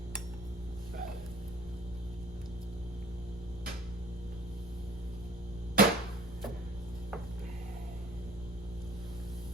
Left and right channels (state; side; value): noise; left; rumble, 17 dB below the sound